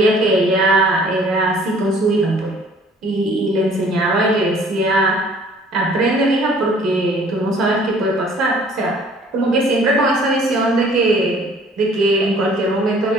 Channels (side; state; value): both; normal; correlation 0.55